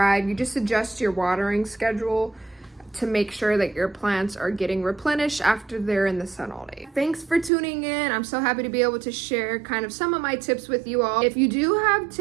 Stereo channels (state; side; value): drops out; left; at 7.5 s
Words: You just adjust your watering schedule to make sure that your plants are getting replenished after they're in the sun all day. Thanks for tuning in. I'm so happy to be able to share kind of some of my tips with you all. If you do have